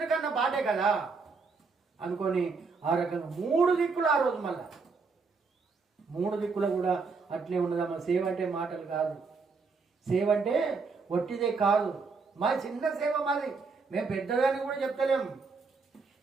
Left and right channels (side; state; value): left; quieter; 4.6 dB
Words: కన్నా బాటే కదా అనుకొని ఆ రకంగా 3 దిక్కులు ఆ రోజు మళ్ళా 3 దిక్కులు కూడా అట్లే ఉన్నదమ్మా. సేవ అంటే మాటలు కాదు, సేవ అంటే ఒట్టిదే కాదు. మా చిన్న సేవ మాది, మేము పెద్దదాన్ని కూడా చెప్తలేము.